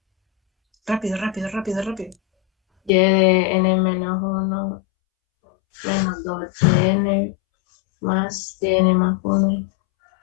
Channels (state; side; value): drops out; right; at 2.9 s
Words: Rápido, rápido, rápido, rápido. Y de n menos 1 menos 2n más n más 1.